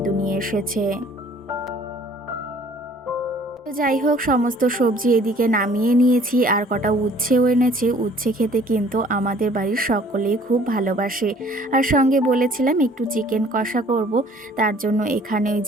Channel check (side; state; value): both; normal; correlation 0.55